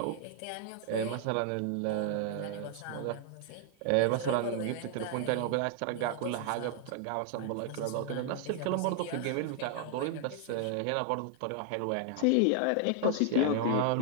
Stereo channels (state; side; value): different; both; correlation 0.00